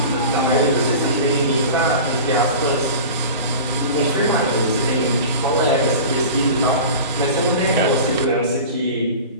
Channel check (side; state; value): both; inverted; correlation -0.35